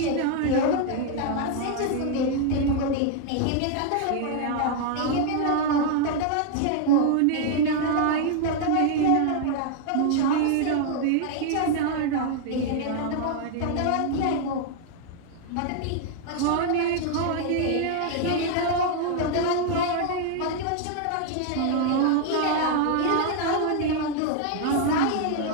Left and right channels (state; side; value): different; both; correlation 0.00